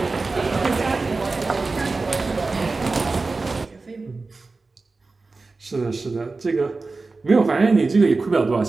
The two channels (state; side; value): quieter; left; 3.8 dB